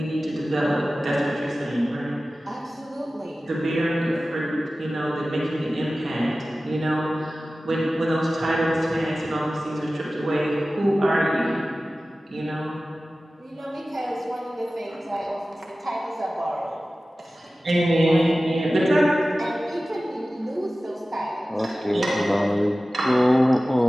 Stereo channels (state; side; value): normal; both; correlation 0.96